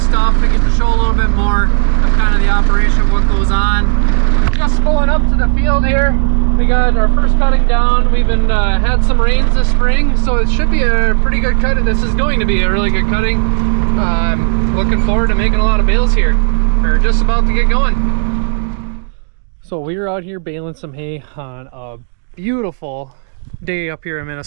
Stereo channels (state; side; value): silent; left; digital silence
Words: stuff and get to show a little bit more of kind of the operation, what goes on. Just pulling up to the field here. We got our first cutting down. We've been had some rains this spring, so it should be a pretty good cut. This is going to be a really good cutting. I'm looking forward to making a lot of bales here. We're just about to get going. So we were out here baling some hay on a beautiful day up here in